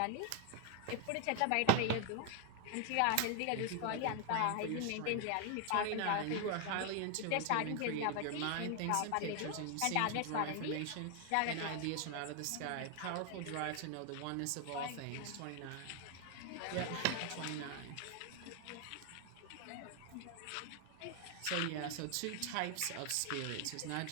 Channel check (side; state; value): both; different; correlation 0.00